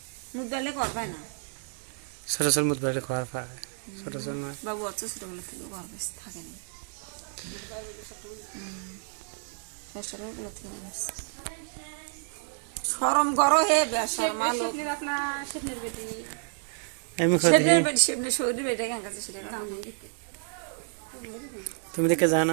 মুখ বেলে করবে না সরসর মুদ বাইরে খাওয়ার পায় সরসর না বাবু আচ্ছা ছোটবেলা থেকে করবে থাকে না শরম করো হে বেশর মালো আমি খাওয়া দিই শরীর বেটে কেন কাছে তুমি দেখে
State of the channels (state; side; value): silent; left; 57 dB below the other